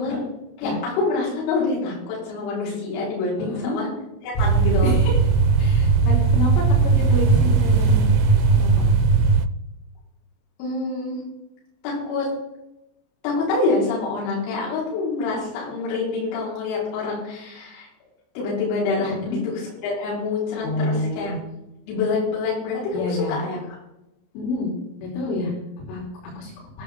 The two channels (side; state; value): right; late; 28 ms